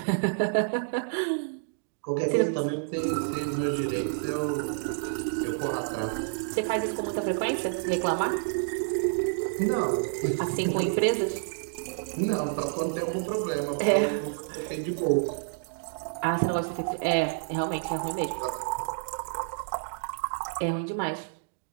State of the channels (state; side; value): silent; left; digital silence